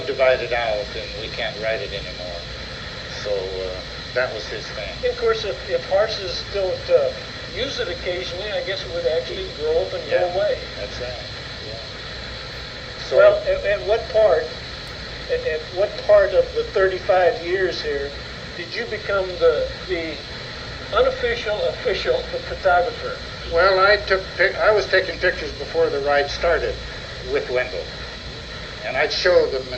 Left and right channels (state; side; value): identical; both; correlation 1.00